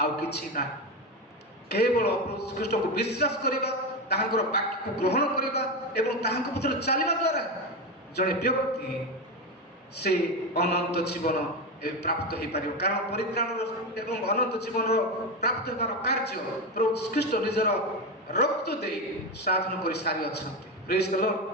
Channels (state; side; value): normal; both; correlation 0.16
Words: କିଛି ନାହିଁ, କେବଳ ପ୍ରଭୁ ଖ୍ରୀଷ୍ଟଙ୍କୁ ବିଶ୍ୱାସ କରିବା, ତାହାଙ୍କର ବାକ୍ୟକୁ ଗ୍ରହଣ କରିବା ଏବଂ ତାହାଙ୍କ ପଥରେ ଚାଲିବା ଦ୍ୱାରା ଜଣେ ବ୍ୟକ୍ତି ସେ ଅନନ୍ତ ଜୀବନ ପ୍ରାପ୍ତ ହେଇପାରିବ। କାରଣ ପରିତ୍ରାଣର ଏବଂ ଅନନ୍ତ ଜୀବନର ପ୍ରାପ୍ତ ହେବାର କାର୍ଯ୍ୟ ପ୍ରଭୁ ଖ୍ରୀଷ୍ଟ ନିଜର ରକ୍ତ ଦେଇ ସାଧନ କରି ସାରିଅଛନ୍ତି। ପ୍ରେଜ୍ ଦ ଲର୍ଡ।